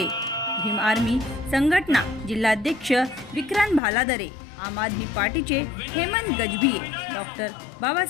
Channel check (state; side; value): drops out; right; at 3.8 s